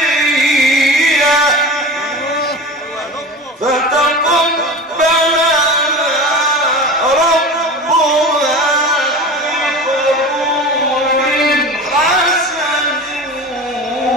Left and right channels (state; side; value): normal; both; correlation 0.32